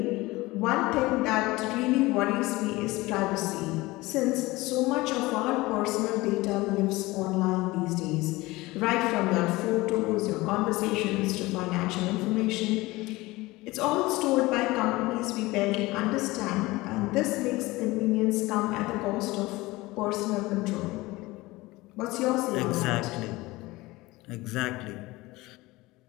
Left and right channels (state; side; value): quieter; right; 20.6 dB